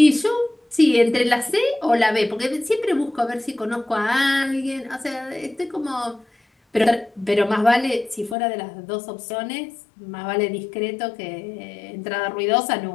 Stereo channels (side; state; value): right; drops out; at 8.3 s